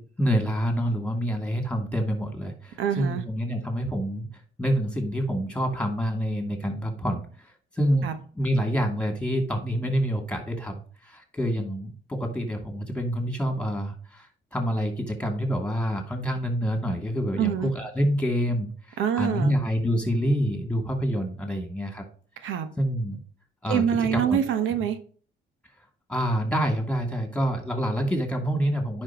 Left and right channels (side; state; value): both; normal; correlation 0.76